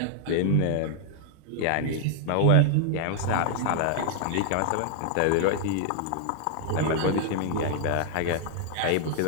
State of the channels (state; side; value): different; both; correlation 0.00